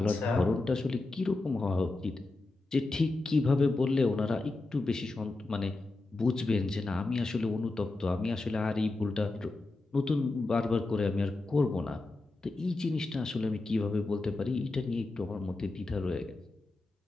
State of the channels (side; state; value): right; quieter; 3.1 dB